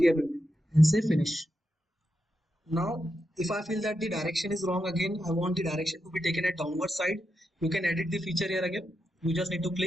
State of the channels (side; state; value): both; normal; correlation 0.86